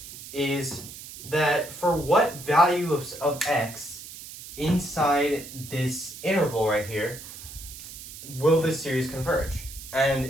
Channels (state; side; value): noise; right; hiss, 13 dB below the sound